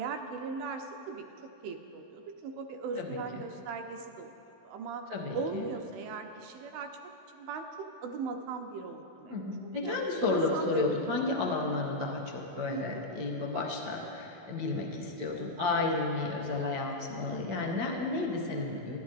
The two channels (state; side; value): late; left; 16 ms